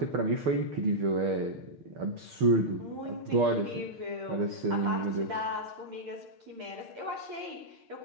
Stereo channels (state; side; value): late; left; 6.6 ms